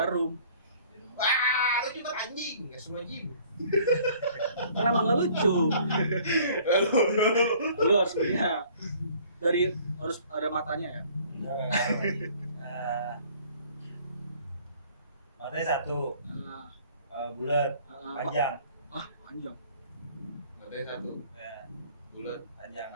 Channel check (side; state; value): both; inverted; correlation -0.55